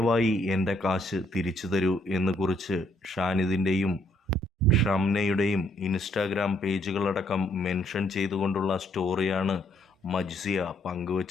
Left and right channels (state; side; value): normal; both; correlation 0.69